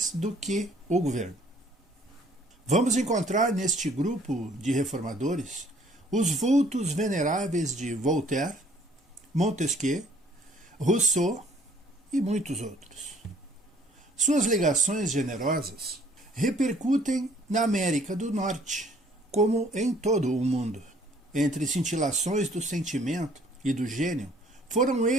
do que o governo. Vamos encontrar neste grupo de reformadores os vultos veneráveis de Voltaire, Montesquieu, Rousseau e muitos outros. Suas ligações generosas repercutem na América do Norte, como em todo o mundo. Entre cintilações do sentimento e do gênio, foram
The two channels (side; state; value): both; normal; correlation 0.59